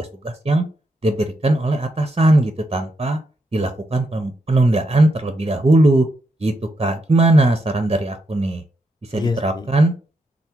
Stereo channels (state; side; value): normal; both; correlation 0.81